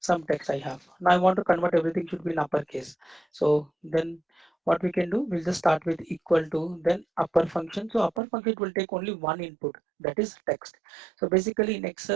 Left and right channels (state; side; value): drops out; left; at 8.2 s